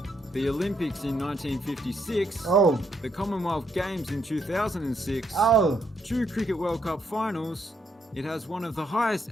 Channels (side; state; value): both; normal; correlation 0.75